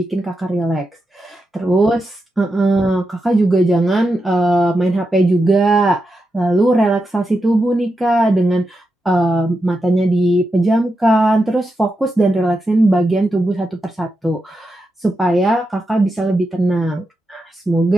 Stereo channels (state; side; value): normal; both; correlation 0.87